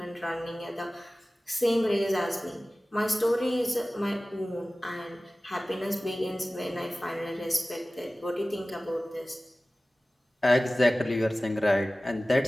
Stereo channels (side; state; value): both; normal; correlation 0.97